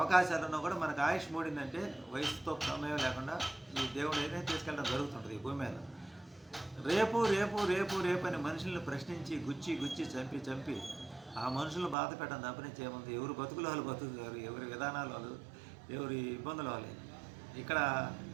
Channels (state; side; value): drops out; left; at 12.0 s